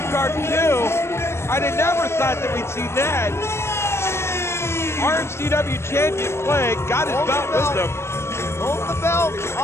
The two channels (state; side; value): late; right; 0.13 ms